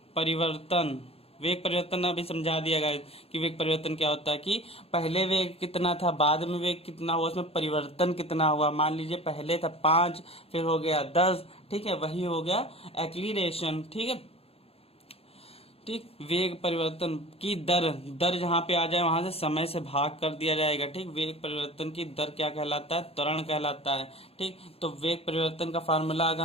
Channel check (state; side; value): late; right; 0.28 ms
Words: परिवर्तन। वेग परिवर्तन अभी समझा दिया गया कि वेग परिवर्तन क्या होता है, कि पहले वेग कितना था, बाद में वेग कितना हुआ, उसमें परिवर्तन कितना हुआ। मान लीजिए पहले था 5, फिर हो गया 10। ठीक है, वही हो गया एक्सीलरेशन। ठीक है, ठीक, वेग परिवर्तन की दर जहां पे आ जाए वहां से समय से भाग कर दिया जाएगा। ठीक, वेग परिवर्तन की दर क्या कहलाता है, त्वरण कहलाता है। ठीक, तो वेग परिवर्तन का फार्मूला अगर